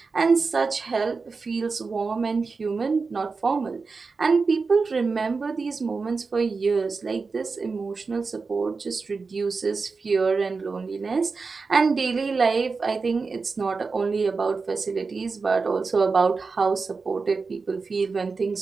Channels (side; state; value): left; quieter; 4.5 dB